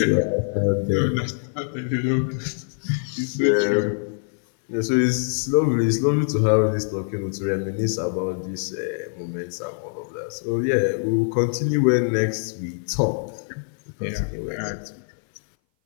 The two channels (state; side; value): silent; right; 58 dB below the other